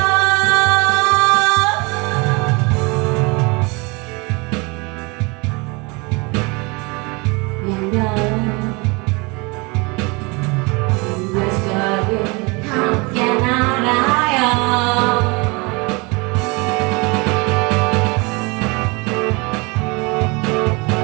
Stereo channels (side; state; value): left; quieter; 27.9 dB